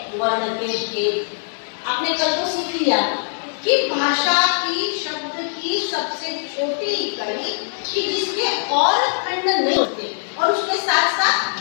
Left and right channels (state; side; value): silent; right; digital silence